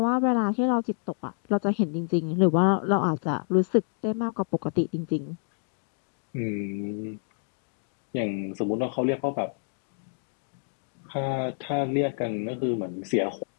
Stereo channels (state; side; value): silent; right; digital silence